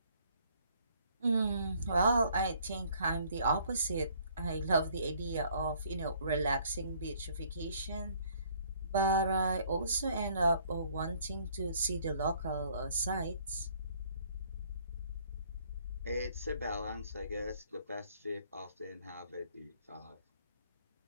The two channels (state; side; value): inverted; both; correlation -0.62